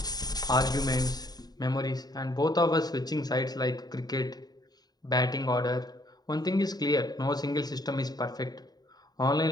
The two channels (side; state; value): right; late; 0.19 ms